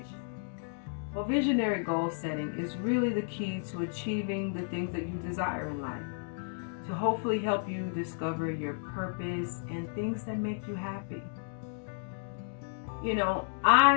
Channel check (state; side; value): silent; right; digital silence